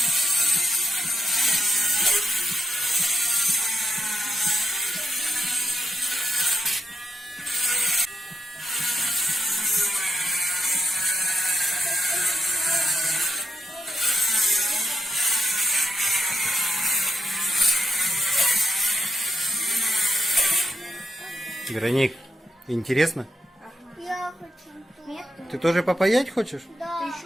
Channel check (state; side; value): normal; both; correlation 0.84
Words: Вероник, интересно? Я хочу. Нет? Ты тоже попаять хочешь? Да. Ты